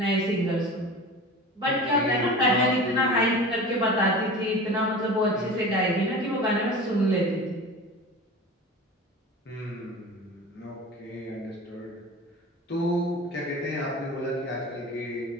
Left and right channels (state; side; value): normal; both; correlation 0.35